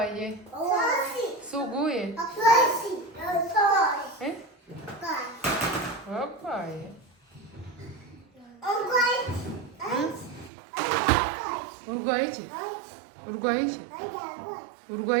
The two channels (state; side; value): drops out; left; at 10.5 s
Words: suguye wabaye urwaye iki urwaye iki